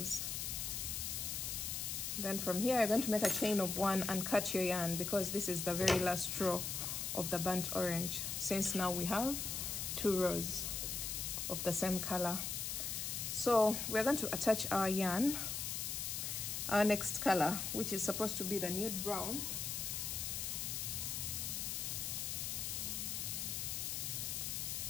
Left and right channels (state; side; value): noise; left; hiss, 2 dB below the sound